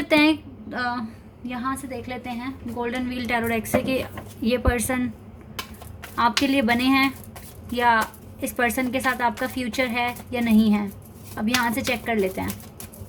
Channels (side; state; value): both; identical; correlation 1.00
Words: हैं, यहाँ से देख लेते हैं गोल्डन व्हील टैरो डेक से कि ये पर्सन आपके लिए बने हैं या इस पर्सन के साथ आपका फ्यूचर है या नहीं है। अब यहाँ से चेक कर लेते हैं